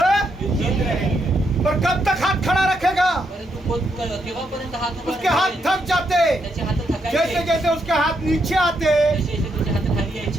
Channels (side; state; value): both; normal; correlation 0.78